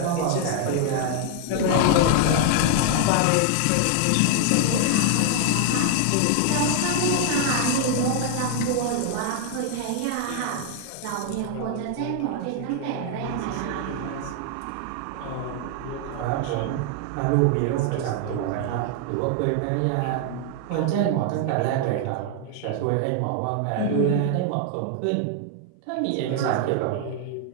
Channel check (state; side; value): different; both; correlation 0.00